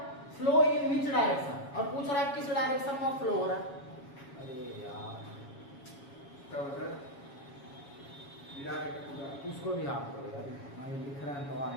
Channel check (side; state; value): right; late; 7.2 ms